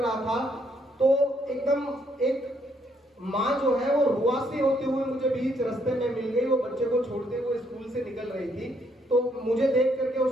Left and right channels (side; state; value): both; normal; correlation 0.71